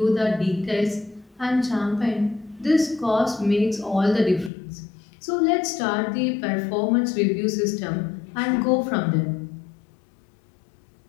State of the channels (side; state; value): right; drops out; at 4.5 s